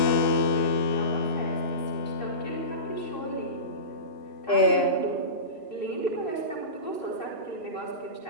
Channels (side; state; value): right; late; 2.9 ms